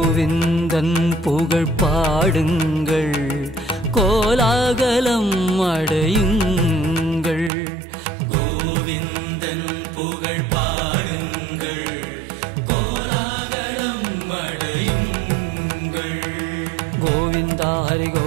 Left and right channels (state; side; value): drops out; left; at 7.5 s